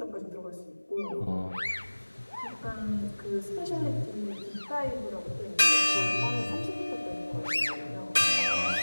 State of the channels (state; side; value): inverted; both; correlation -1.00